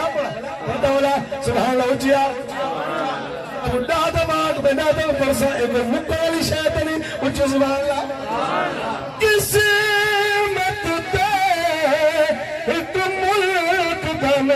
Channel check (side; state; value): both; identical; correlation 1.00